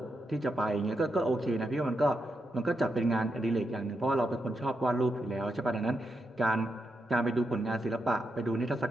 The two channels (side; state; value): both; normal; correlation 0.84